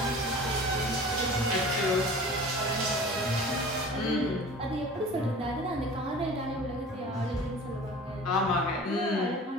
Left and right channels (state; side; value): normal; both; correlation 0.41